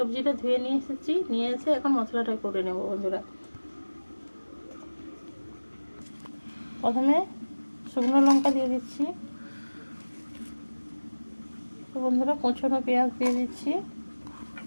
ধুয়ে নিয়ে এসে এখন মশলাটা করে নেব বন্ধুরা। প্রথমে শুকনো লঙ্কা দিয়ে দিচ্ছি। তো বন্ধুরা, কুচনো পেঁয়াজ দিয়ে দিচ্ছি,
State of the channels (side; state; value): both; inverted; correlation -1.00